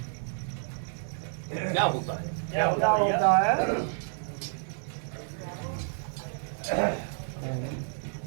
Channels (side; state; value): left; silent; digital silence